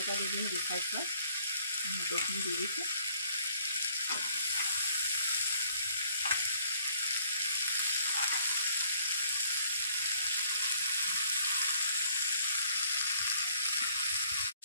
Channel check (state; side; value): inverted; both; correlation -0.62